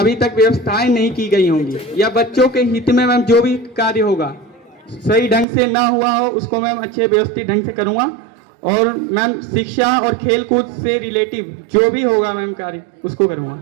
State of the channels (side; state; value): left; drops out; at 5.5 s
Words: तक व्यवस्थाएं नहीं की गई होंगी या बच्चों के हित में मैम जो भी कार्य होगा सही ढंग से ना हुआ हो उसको मैम अच्छे व्यवस्थित ढंग से करूंगा। और मैम शिक्षा और खेल कूद से रिलेटिव जो भी होगा मैम कार्य उसको